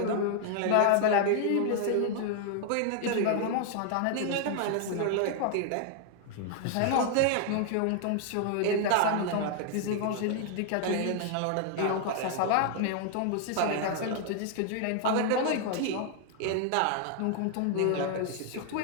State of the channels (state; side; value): different; both; correlation 0.00